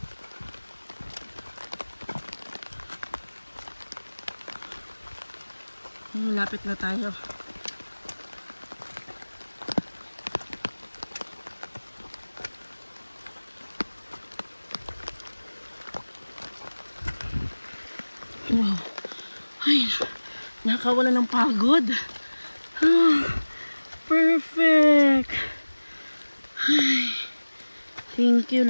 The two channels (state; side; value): inverted; both; correlation -1.00